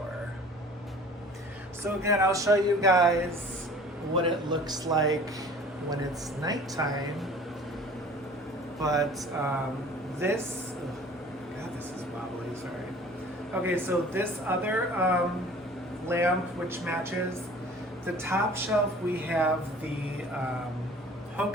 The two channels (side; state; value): both; normal; correlation 0.47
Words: So again, I'll show you guys what it looks like when it's nighttime. But this, God, this is wobbly, sorry. Okay, so this other lamp, which matches the top shelf, we have the